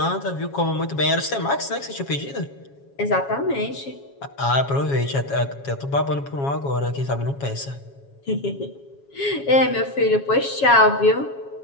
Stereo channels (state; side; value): late; right; 7.3 ms